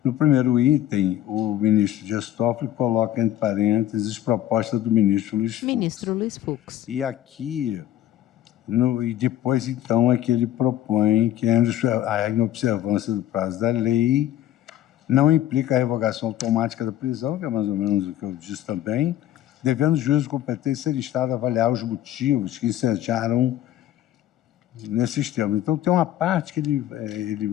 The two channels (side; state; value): right; quieter; 12.5 dB